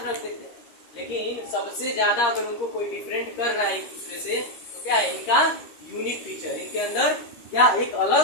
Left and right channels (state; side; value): late; right; 13 ms